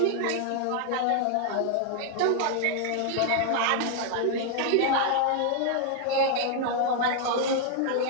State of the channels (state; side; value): different; both; correlation 0.00